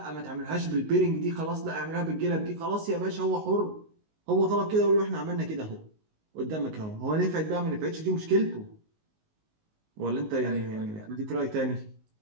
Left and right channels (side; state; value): left; late; 19 ms